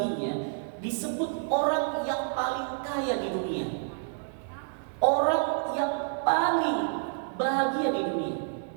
disebut orang yang paling kaya di dunia, orang yang paling bahagia di dunia.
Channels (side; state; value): left; silent; digital silence